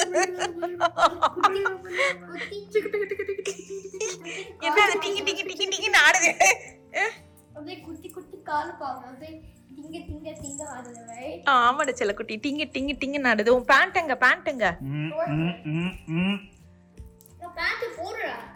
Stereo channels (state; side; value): identical; both; correlation 1.00